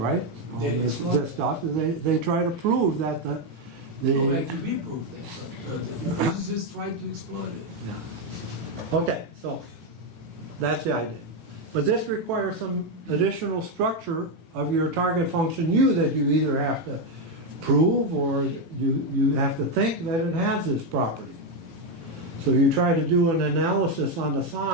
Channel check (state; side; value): late; left; 18 ms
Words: All this stuff. They try to prove that Well, the actually, we proved that, but the physicists tried to exploit it. yeah. Okay, so that's the idea. But this requires some additional structure of your target function u that you either have to prove or you have to think that it has this property. So you try to do an analysis on the